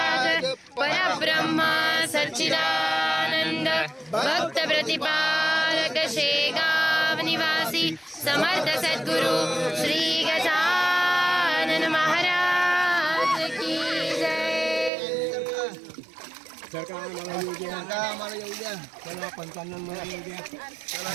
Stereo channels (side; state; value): left; drops out; at 14.9 s